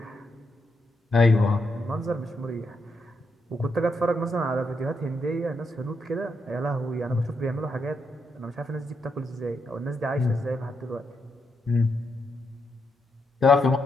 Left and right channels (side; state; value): both; normal; correlation 0.81